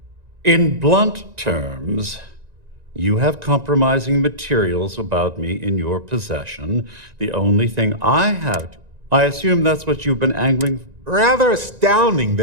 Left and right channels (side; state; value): left; late; 1.9 ms